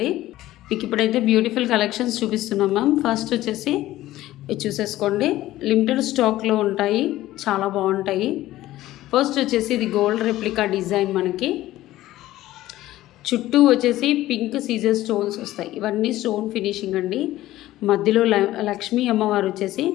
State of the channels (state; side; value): quieter; right; 15.4 dB